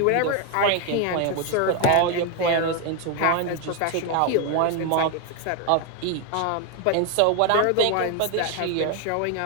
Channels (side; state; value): both; different; correlation 0.01